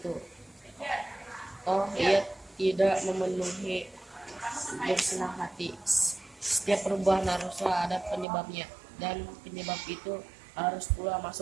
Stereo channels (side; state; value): left; drops out; at 8.2 s